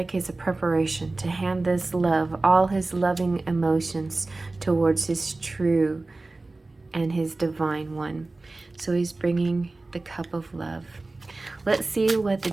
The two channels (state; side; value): quieter; left; 3.2 dB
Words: he's a preparation to hand this love, all his loving emotions towards his true and his divine one. So he's bringing the cup of love. Let's see what the